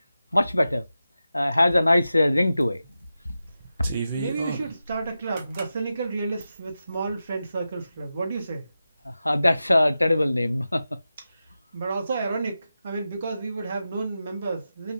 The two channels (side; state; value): both; inverted; correlation -0.92